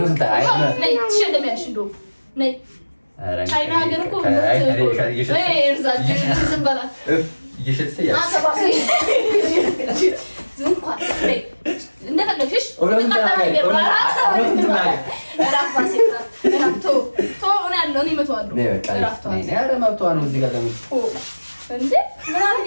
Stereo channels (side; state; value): both; inverted; correlation -1.00